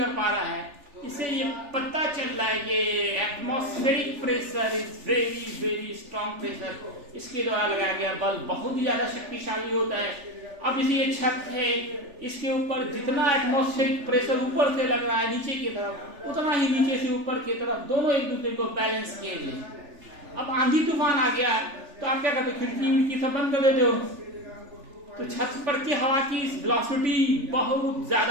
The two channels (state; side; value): late; left; 3.4 ms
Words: पा रहा है। इससे ये पता चल रहा है कि atmospheric pressure is very very strong pressure. इसके द्वारा लगाया गया बल बहुत ही ज्यादा शक्तिशाली होता है। अब ये छत है, इसके ऊपर जितना एटमॉस्फेरिक प्रेशर ऊपर से लग रहा है नीचे की तरफ, उतना ही नीचे से ऊपर की तरफ, दोनों एक दूसरे को बैलेंस किए हुए। अब आंधी तूफान आ गया तो आप क्या करते हो, खिड़की सब बंद कर देते हो, तो छत पर की हवा की वेलोसिटी बहुत